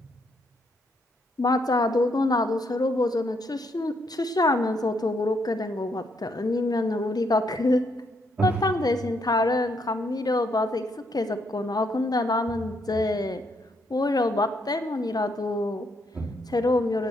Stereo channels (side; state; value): both; normal; correlation 0.74